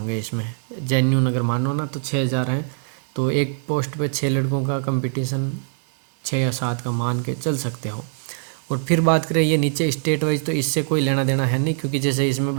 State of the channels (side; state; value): left; silent; digital silence